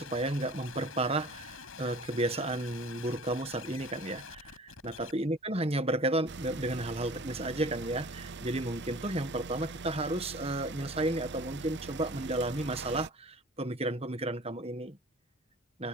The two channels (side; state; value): both; normal; correlation 0.44